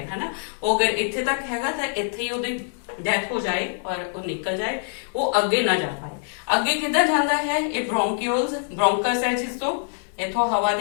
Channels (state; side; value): silent; right; 62 dB below the other